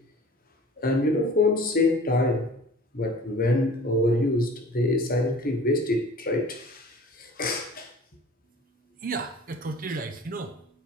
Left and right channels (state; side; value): normal; both; correlation 0.45